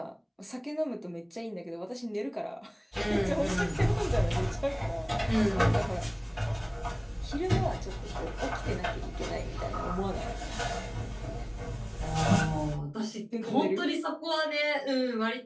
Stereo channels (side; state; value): both; identical; correlation 1.00